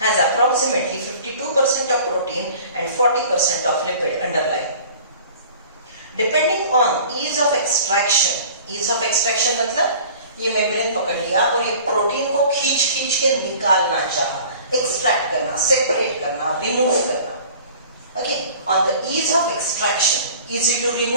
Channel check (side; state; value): both; inverted; correlation -0.46